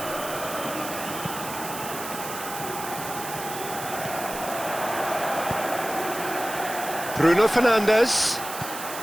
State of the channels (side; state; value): right; noise; hiss, 9 dB below the sound